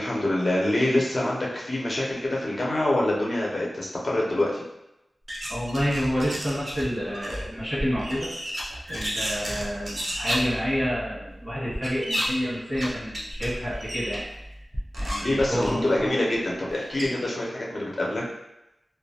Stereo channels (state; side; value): normal; both; correlation 0.96